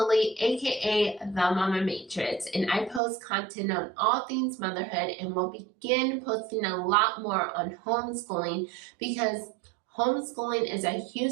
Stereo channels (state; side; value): drops out; left; at 3.0 s